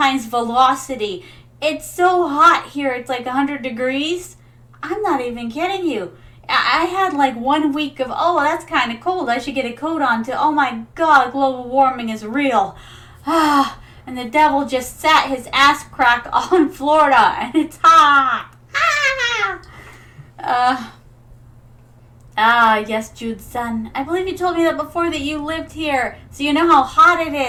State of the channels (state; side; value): identical; both; correlation 1.00